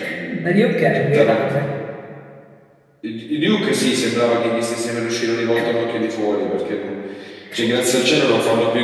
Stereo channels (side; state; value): both; identical; correlation 1.00